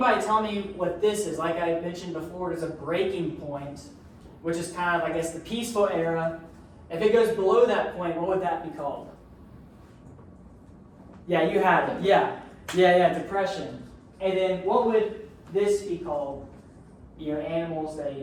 tell me what this is? Like I mentioned before, there's a breaking point, which is kind of, I guess, the peaceful era. If it goes below that point, what would that be called? Yeah, you had it. Yeah, depression. And then what would this be called? Animals,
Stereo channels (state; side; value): identical; both; correlation 1.00